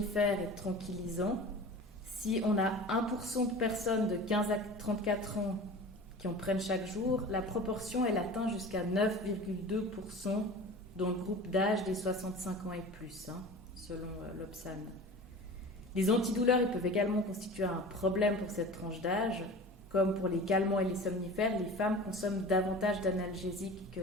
et de tranquillisants. Si on a 1% de personnes de 15 à 34 ans qui en prennent chaque jour, la proportion elle atteint jusqu'à 9,2% dans le groupe d'âge des 65 ans et plus, selon l'Obsan. Les antidouleurs ils peuvent également constituer un problème pour cette tranche d'âge. Comme pour les calmants et les somnifères, les femmes consomment davantage d'analgésiques que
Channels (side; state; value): both; normal; correlation 0.37